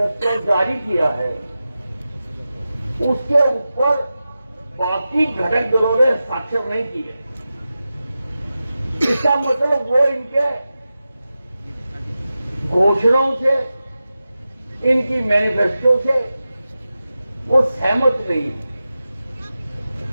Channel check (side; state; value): both; inverted; correlation -0.93